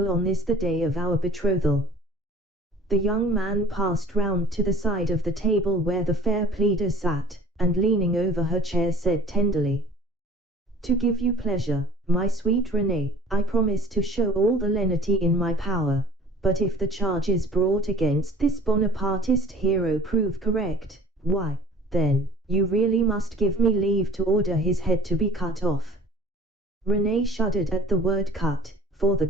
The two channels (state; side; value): normal; both; correlation 0.48